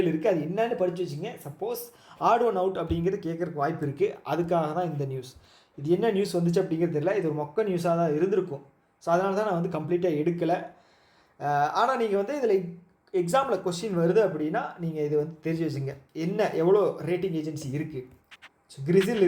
இருக்குது. அது என்னன்னு படித்து வச்சுங்க. சப்போஸ் ஆட் ஒன் அவுட் அப்படிங்கிறது கேட்குறக்கு வாய்ப்பு இருக்குது. அதுக்காக தான் இந்த நியூஸ். இது என்ன நியூஸ் வந்துச்சு அப்படிங்கிறது தெரியல. இது ஒரு மொக்க நியூஸாக தான் இருந்திருக்கும். ஸோ அதனால தான் நான் வந்து கம்ப்ளீட்டாக எடுக்கலை. ஆனால் நீங்கள் வந்து இதில் எக்ஸாமில் கொஸ்டின் வருது அப்படின்னா நீங்கள் இது வந்து தெரிஞ்சு வச்சுங்க. என்ன எவ்வளோ ரேட்டிங் ஏஜென்சி இருக்குது. ஸோ கிரிசில்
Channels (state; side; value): identical; both; correlation 1.00